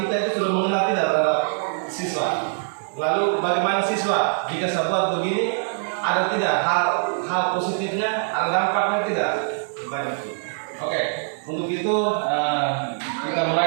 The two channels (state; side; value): silent; left; 63 dB below the other